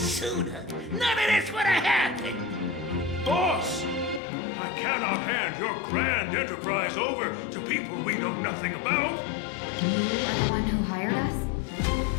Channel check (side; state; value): right; drops out; at 4.2 s